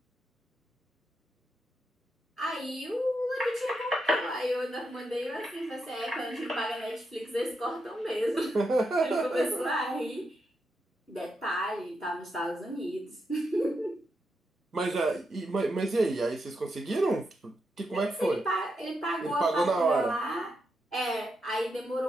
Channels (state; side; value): normal; both; correlation 0.84